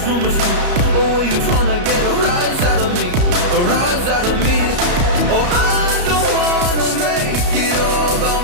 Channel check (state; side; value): late; left; 34 ms